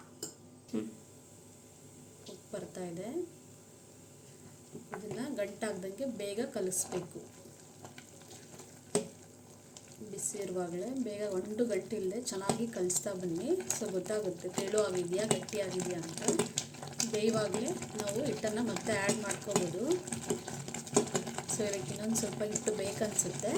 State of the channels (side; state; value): both; identical; correlation 1.00